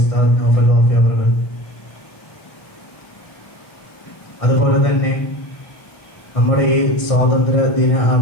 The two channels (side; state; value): right; late; 1.6 ms